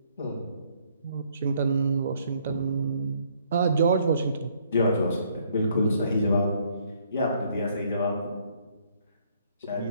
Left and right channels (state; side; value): inverted; both; correlation -0.67